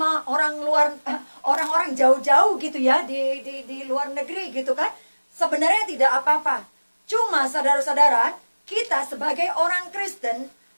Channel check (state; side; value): inverted; both; correlation -1.00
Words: orang luar, orang-orang jauh-jauh gitu ya, di luar negeri gitu kan. Sebenarnya tidak apa-apa. Cuma saudara-saudara, kita sebagai orang Kristen